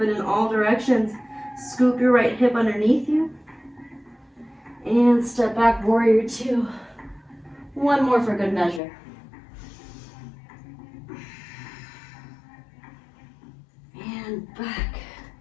in all directions. Scoop your right hip underneath you. And step back, warrior 2. One more for good measure. And back,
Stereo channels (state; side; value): drops out; right; at 8.8 s